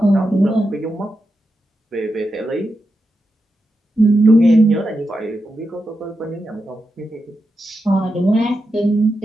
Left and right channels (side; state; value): both; normal; correlation 0.88